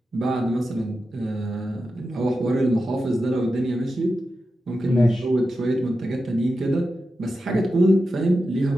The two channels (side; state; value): both; normal; correlation 0.91